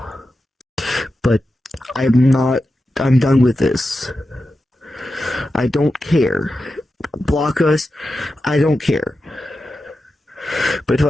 but I'm done with this. I don't care. Block us, I don't care. But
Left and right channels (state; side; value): normal; both; correlation 0.91